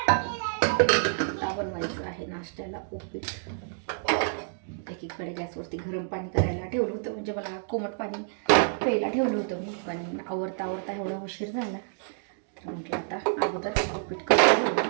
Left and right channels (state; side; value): silent; left; digital silence